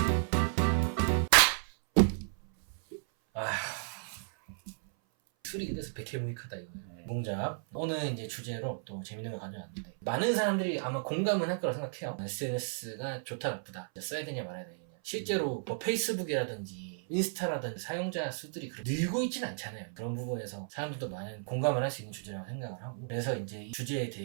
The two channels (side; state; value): left; silent; 55 dB below the other